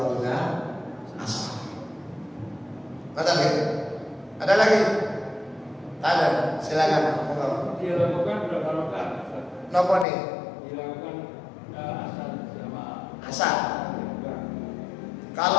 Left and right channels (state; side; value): drops out; right; at 10.1 s